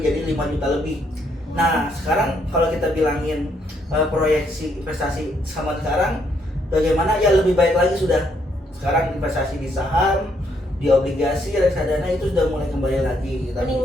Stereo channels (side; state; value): both; normal; correlation 0.72